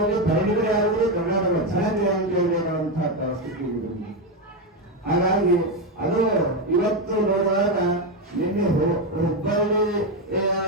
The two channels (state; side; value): normal; both; correlation 0.09